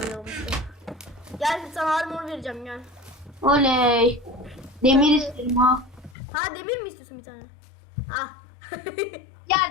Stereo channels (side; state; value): right; drops out; at 6.2 s